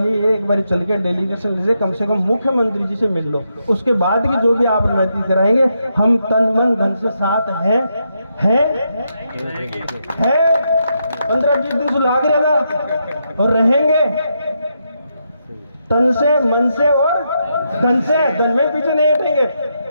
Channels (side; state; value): both; inverted; correlation -0.81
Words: एक बार चल के डेलीगेशन से कम मुख्यमंत्री जी से मिल लो, उसके बाद की जो भी आप रणनीति कराएंगे हम तन मन धन से साथ है 15-20 दिन से लाग रहेगा और रहेंगे तन से मन से और धन से, धन में पीछे नहीं हटेंगे।